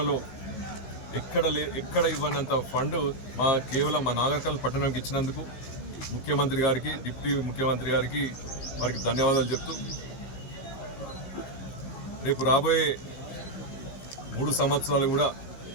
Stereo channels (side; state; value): right; late; 15 ms